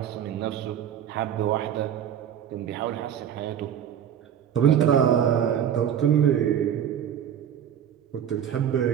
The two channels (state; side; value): quieter; left; 9.4 dB